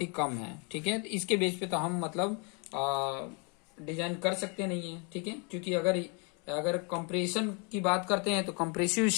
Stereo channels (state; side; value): quieter; right; 34.6 dB